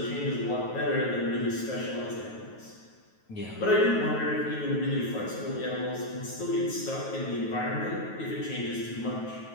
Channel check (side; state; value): right; late; 9.3 ms